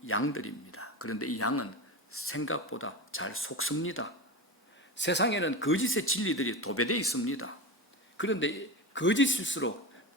양들입니다. 그런데 이 양은 생각보다 잘 속습니다. 세상에는 거짓의 진리들이 도배되어 있습니다. 그런데 거짓일수록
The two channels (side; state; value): both; normal; correlation 0.23